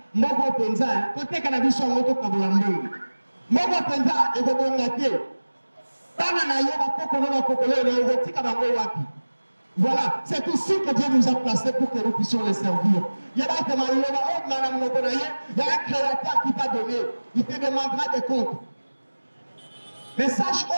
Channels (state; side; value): inverted; both; correlation -1.00